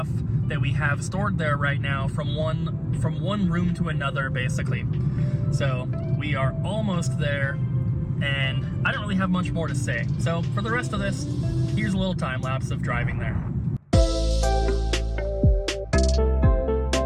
that we have stored there right now from one room to another, basically. So we are almost there, and I don't really have much more to say. So for the rest of this, here's a little time lapse of driving there.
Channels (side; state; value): both; identical; correlation 1.00